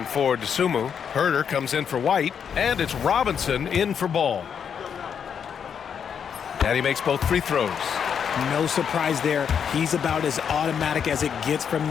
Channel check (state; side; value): quieter; right; 7.5 dB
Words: for Dosunmu. Herter comes in for White, and it's Robinson in for Ball. And he makes both free throws. No surprise there. He's about as automatic as it gets from